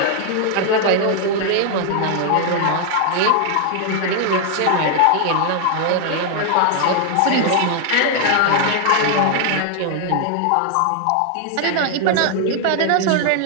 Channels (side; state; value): both; different; correlation 0.00